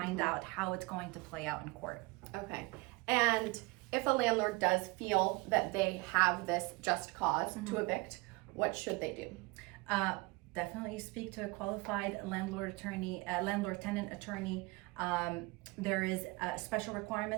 out how it's going to play out in court. Okay. And if a landlord does feel that they have this just cause to evict, what should they do? Definitely speak to a qualified landlord-tenant attorney. There is special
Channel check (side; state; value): left; quieter; 24.7 dB